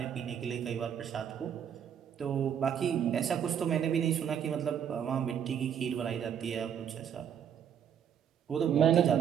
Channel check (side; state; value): left; quieter; 8.6 dB